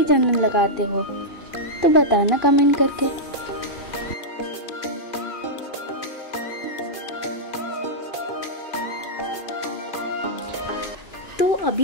चंदन लगाते हो तो बताना कमेंट करके। तो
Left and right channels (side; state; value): right; late; 2.5 ms